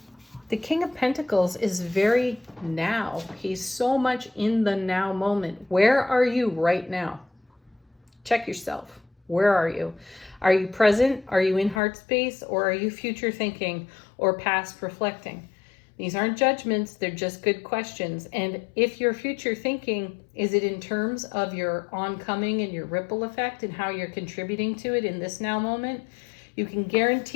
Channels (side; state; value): right; drops out; at 11.8 s